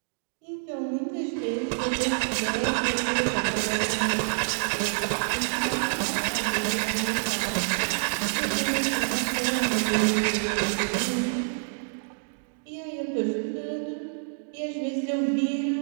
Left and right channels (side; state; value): left; silent; digital silence